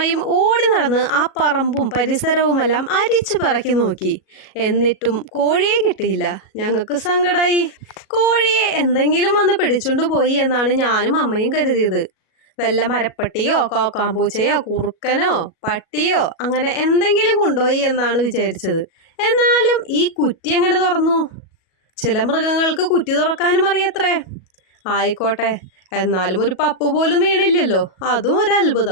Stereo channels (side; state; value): right; late; 37 ms